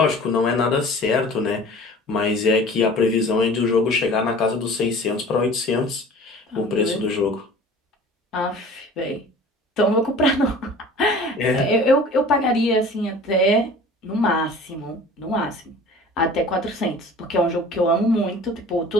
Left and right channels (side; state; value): both; normal; correlation 0.44